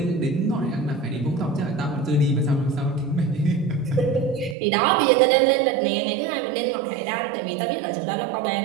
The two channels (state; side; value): drops out; left; at 4.5 s